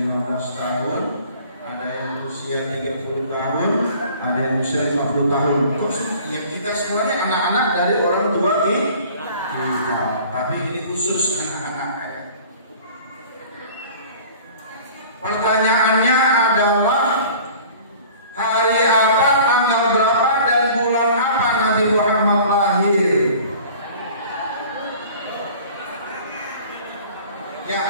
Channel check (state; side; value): inverted; both; correlation -0.46